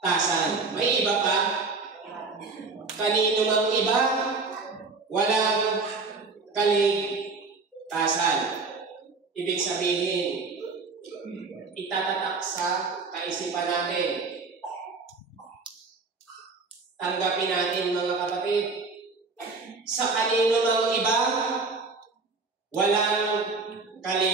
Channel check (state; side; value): quieter; left; 4.1 dB